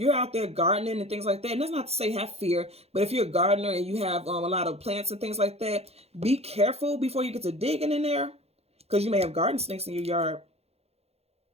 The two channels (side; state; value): left; late; 0.30 ms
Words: out there gardening and things like that, and that's not to say have fear, but if you're a gardener and you have a lot of plants and things like that, be careful before you get to digging in there, because you may have garden snakes in your yard.